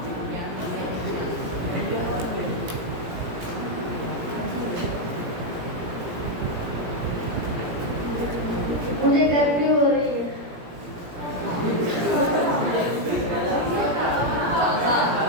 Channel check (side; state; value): left; late; 17 ms